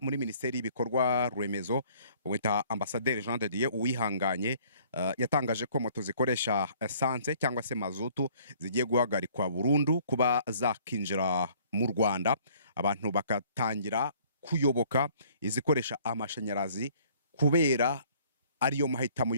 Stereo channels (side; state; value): both; inverted; correlation -0.57